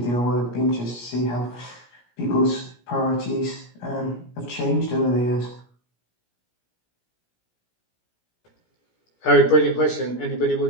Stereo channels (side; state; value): right; late; 17 ms